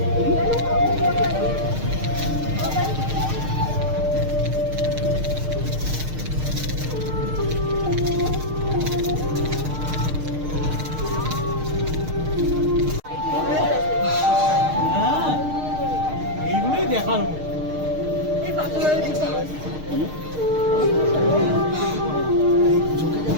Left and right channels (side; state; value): left; late; 6.5 ms